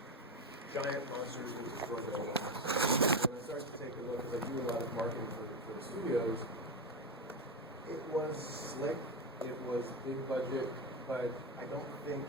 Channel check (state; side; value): normal; both; correlation 0.13